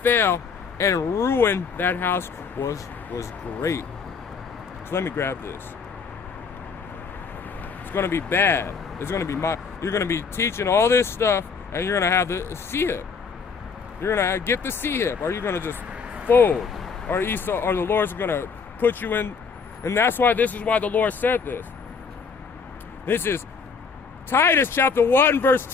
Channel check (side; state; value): right; quieter; 5.4 dB